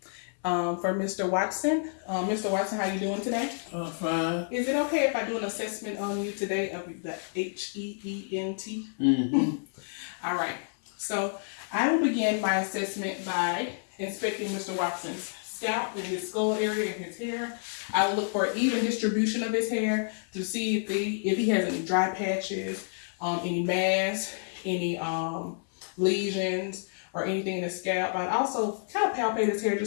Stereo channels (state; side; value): silent; right; 58 dB below the other